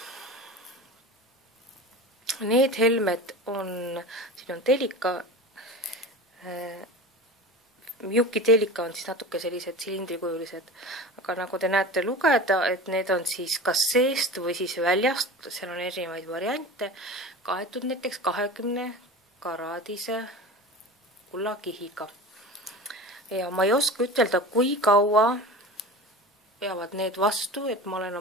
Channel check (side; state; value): both; normal; correlation 0.32